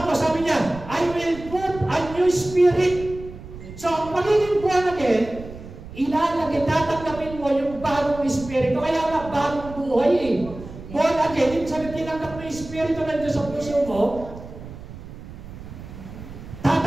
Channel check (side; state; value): right; noise; rumble, 14 dB below the sound